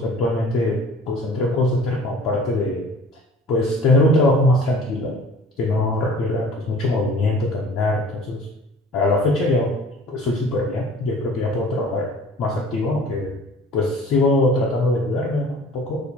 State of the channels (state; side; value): normal; both; correlation 0.47